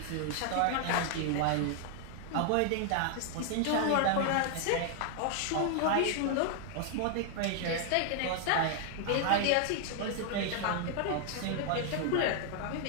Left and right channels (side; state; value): both; different; correlation 0.00